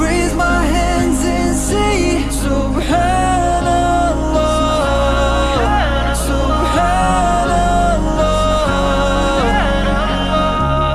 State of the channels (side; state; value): both; identical; correlation 1.00